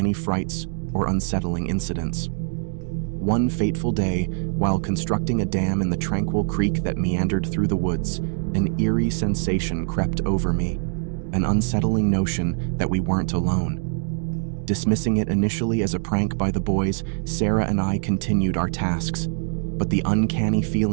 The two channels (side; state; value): left; silent; digital silence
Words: frights or unsettling incidents. One fateful day, while constructing a dam in the tranquil creek that meandered through the woods, an eerie sensation crept over me, an unsettling notion that we weren't alone. Dismissing it initially as a prank by the boys, Sarah and I continued our tasks. But the uncanny